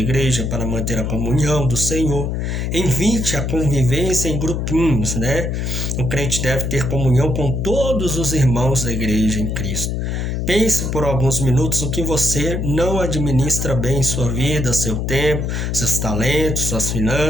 para manter a comunhão do Senhor. Invite a convivência em grupinhos, né? O crente deve ter comunhão com todos os irmãos da igreja em Cristo. Pense por alguns minutos o que você não administra bem em sua vida, seu tempo, seus talentos, suas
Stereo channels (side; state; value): left; noise; hum, 1 dB below the sound